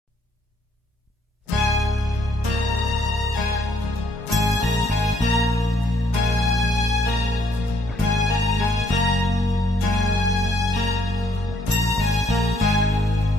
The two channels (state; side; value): normal; both; correlation 0.68